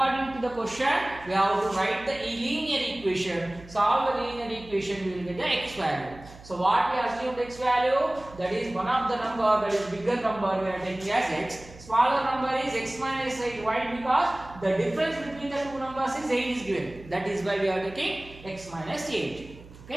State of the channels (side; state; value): right; noise; hum, 19 dB below the sound